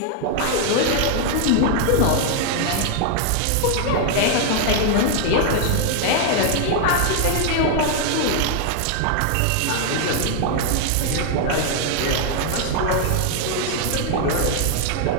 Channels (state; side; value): different; both; correlation 0.00